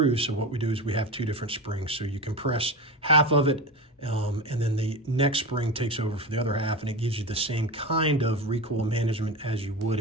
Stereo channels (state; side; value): normal; both; correlation 0.24